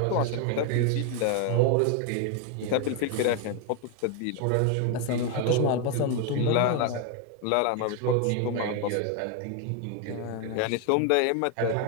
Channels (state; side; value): different; both; correlation 0.01